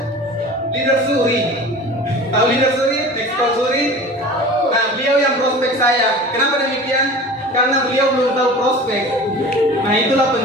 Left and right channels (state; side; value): normal; both; correlation 0.38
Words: leader Suri. Tahu leader Suri? Ekspor Suri. Nah beliau yang prospek saya. Kenapa demikian? Karena beliau belum tahu prospek. Nah itulah